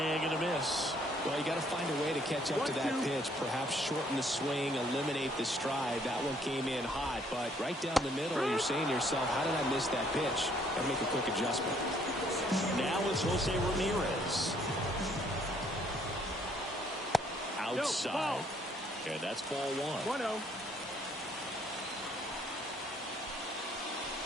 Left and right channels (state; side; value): normal; both; correlation 0.65